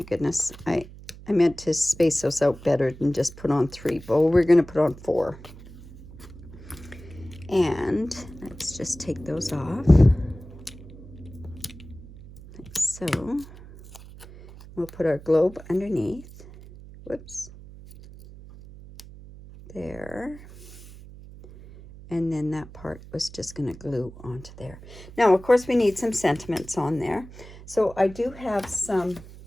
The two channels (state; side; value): noise; right; hum, 17 dB below the sound